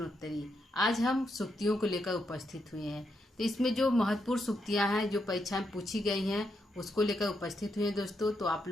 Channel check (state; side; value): normal; both; correlation 0.81